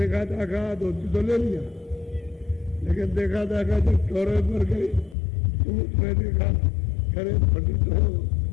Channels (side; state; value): right; drops out; at 5.2 s